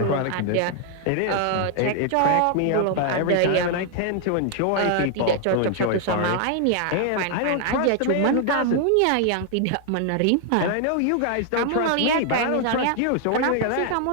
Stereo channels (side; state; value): both; different; correlation 0.00